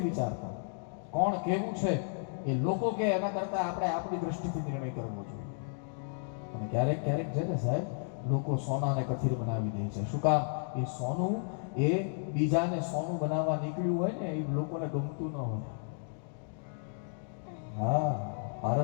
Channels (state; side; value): silent; right; digital silence